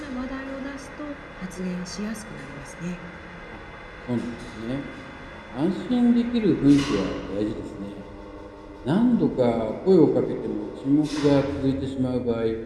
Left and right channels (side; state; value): both; identical; correlation 1.00